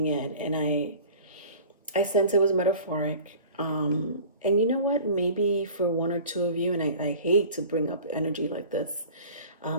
in, and I sense it was metaphoric. And you know what? Maybe for 1 or 2 of you, and I hate to bring up energy like this,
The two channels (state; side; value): inverted; both; correlation -0.42